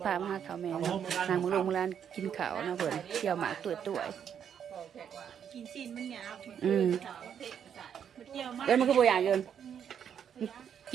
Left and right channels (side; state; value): left; quieter; 8.4 dB